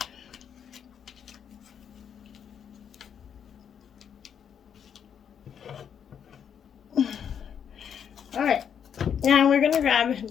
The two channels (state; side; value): quieter; right; 8.1 dB